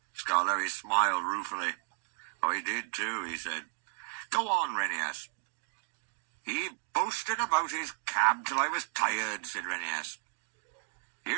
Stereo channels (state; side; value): silent; left; 55 dB below the other